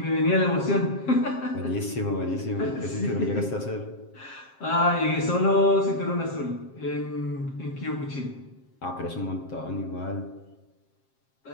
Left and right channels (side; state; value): right; late; 7.5 ms